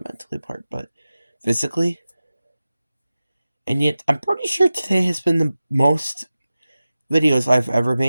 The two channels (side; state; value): both; inverted; correlation -0.95